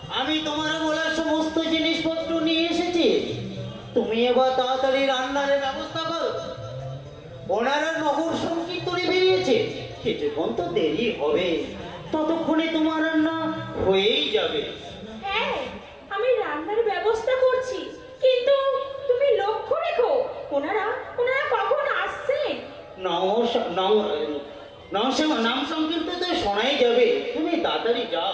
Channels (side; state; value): both; identical; correlation 1.00